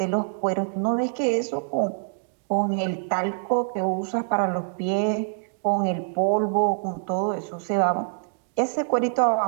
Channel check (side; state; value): left; silent; digital silence